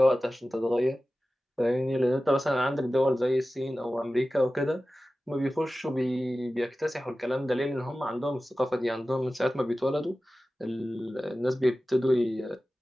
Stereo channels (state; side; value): normal; both; correlation 0.95